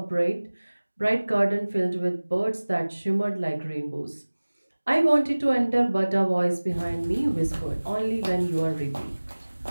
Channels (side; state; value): both; inverted; correlation -1.00